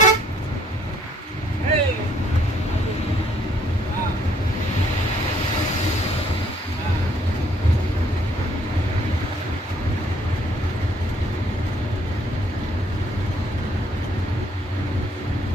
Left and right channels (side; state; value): both; normal; correlation 0.65